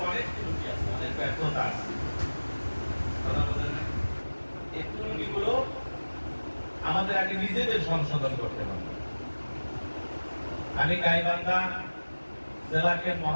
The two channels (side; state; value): both; inverted; correlation -1.00